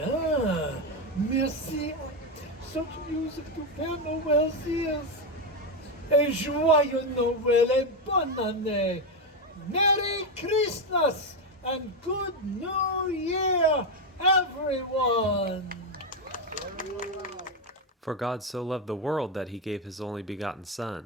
Merci. Such music to Père Noël's ears. Et joyeux Noël et bonne année. Merry Christmas and good New Year, everyone. For God so loved the world that he gave his only begotten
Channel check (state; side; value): normal; both; correlation 0.08